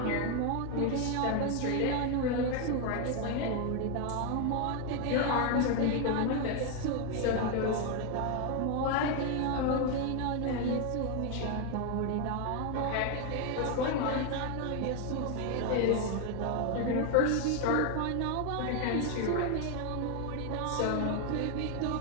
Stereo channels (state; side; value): different; both; correlation 0.01